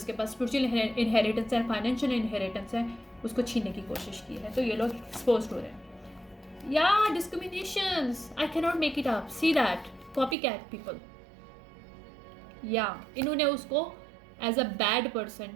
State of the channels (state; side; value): drops out; left; at 10.4 s